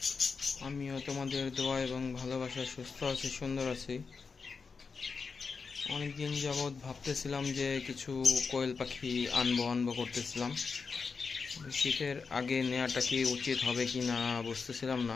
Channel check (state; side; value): quieter; right; 5.1 dB